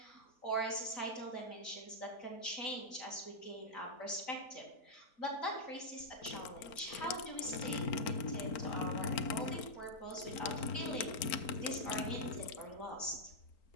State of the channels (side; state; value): right; late; 4.4 ms